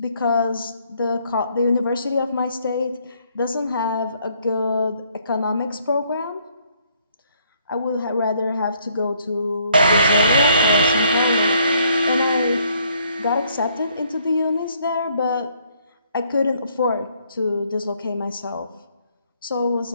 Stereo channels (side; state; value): both; inverted; correlation -0.67